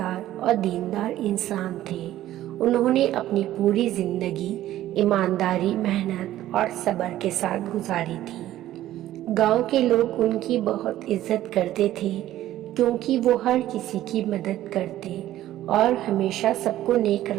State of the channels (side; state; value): left; quieter; 13.7 dB